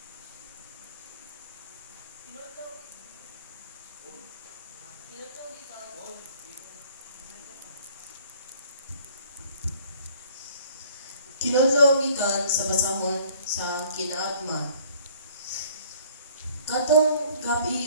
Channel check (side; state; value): both; inverted; correlation -0.56